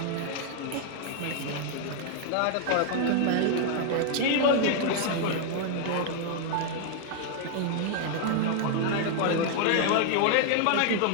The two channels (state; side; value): different; both; correlation 0.00